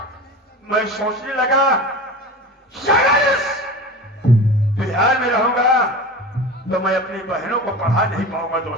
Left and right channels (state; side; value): normal; both; correlation 0.32